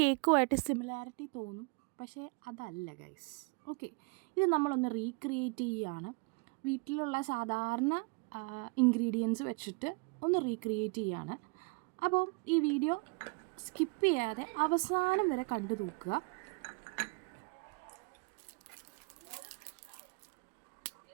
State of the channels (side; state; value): left; quieter; 31.5 dB